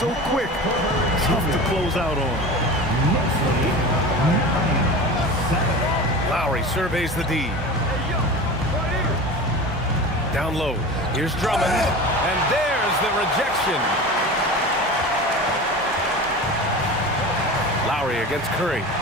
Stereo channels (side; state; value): both; normal; correlation 0.32